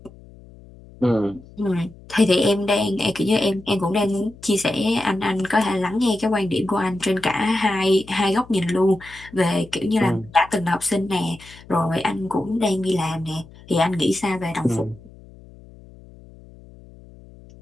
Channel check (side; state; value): left; noise; hum, 22 dB below the sound